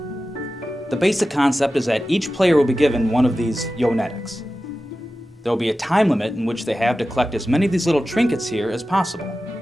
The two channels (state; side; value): normal; both; correlation 0.94